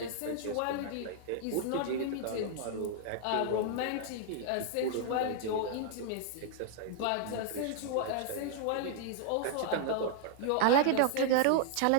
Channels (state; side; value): different; both; correlation -0.01